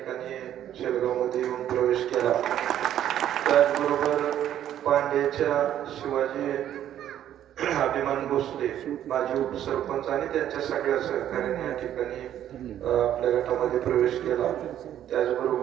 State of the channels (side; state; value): left; quieter; 11.1 dB